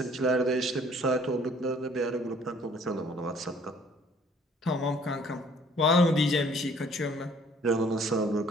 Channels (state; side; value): normal; both; correlation 0.57